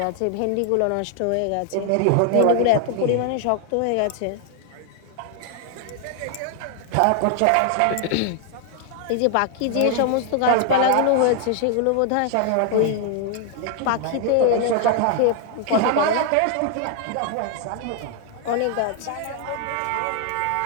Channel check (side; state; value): both; different; correlation 0.00